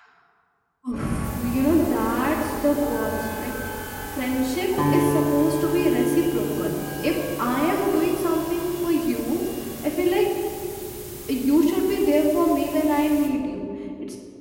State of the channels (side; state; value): both; identical; correlation 1.00